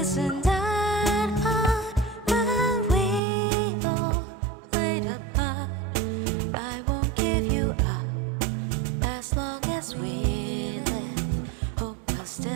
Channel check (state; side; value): drops out; left; at 3.2 s